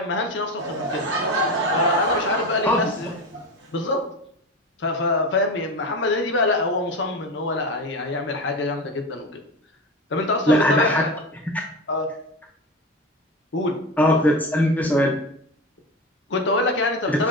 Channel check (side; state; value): both; normal; correlation 0.24